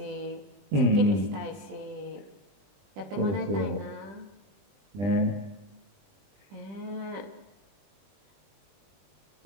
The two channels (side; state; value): left; late; 20 ms